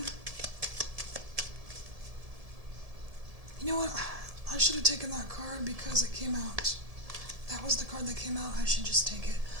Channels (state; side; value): late; left; 1.7 ms